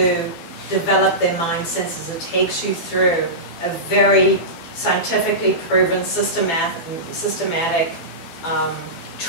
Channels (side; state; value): right; late; 12 ms